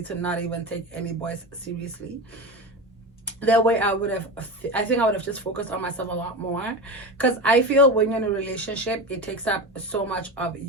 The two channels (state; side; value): normal; both; correlation 0.23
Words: to not even take any boys seriously. That way I think I would have just focused on myself a lot more, because I feel when you're in a relationship, it takes up so much of